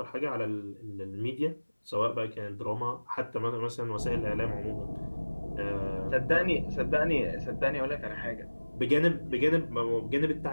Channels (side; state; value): both; inverted; correlation -1.00